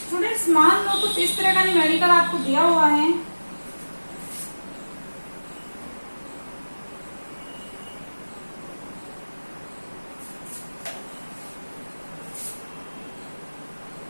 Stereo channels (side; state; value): both; inverted; correlation -1.00